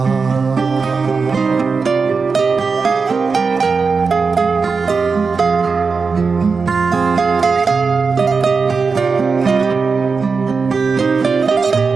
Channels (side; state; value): left; quieter; 4.8 dB